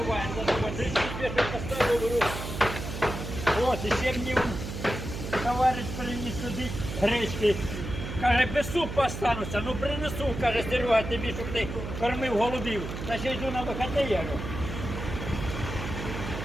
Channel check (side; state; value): right; noise; hum, 7 dB below the sound